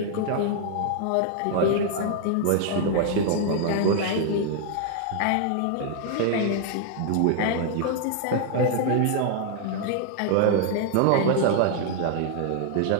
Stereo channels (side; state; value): both; different; correlation 0.00